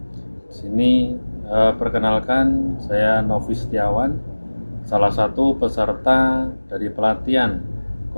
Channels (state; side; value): inverted; both; correlation -1.00